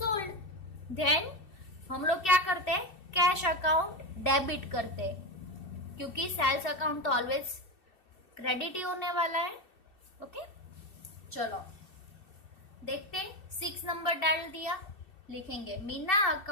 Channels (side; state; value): right; late; 2.7 ms